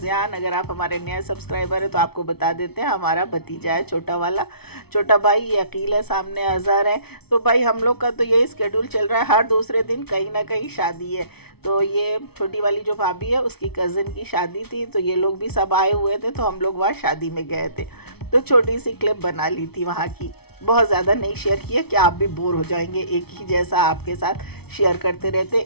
अगर आप हमारे नए सब्सक्राइबर हैं तो आपको बता देते हैं, हमारा भतीजा है, छोटा वाला, छोटा भाई। ये अकील है, सामने अज़हर है। तो भाई हम लोग का तो यही स्केड्यूल चल रहा है, हर दूसरे दिन कहीं ना कहीं शादी है। तो ये छोटी वाली जो भाभी है उसकी कज़न की शादी थी, तो ये लोग भी सब आए हुए थे, तो हम लोग वहाँ शादी में गए थे। तो छोटी सी क्लिप बना ली थी वहाँ की, बहुत ज़्यादा नहीं शेयर किया कि आप भी बोर हो जाएंगे। एक ही जैसा आपके साथ शेयर करते रहते,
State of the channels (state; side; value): late; right; 0.97 ms